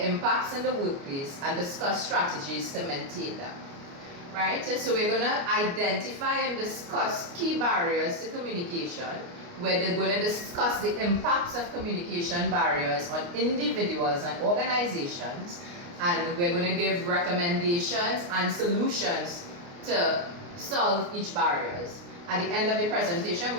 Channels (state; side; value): late; left; 29 ms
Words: impacts in the workplace and discuss strategies to maintain them. Right? So we're going to identify and discuss key barriers to communication. We're going to discuss the impacts of communication barriers on individuals and organizations, and we're going to give recommendations and solutions to solve each barriers. At the end of the presentation,